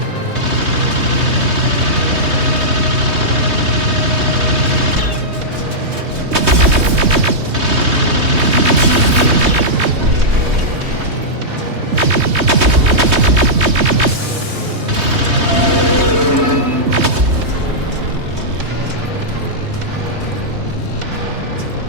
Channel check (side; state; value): left; late; 3.2 ms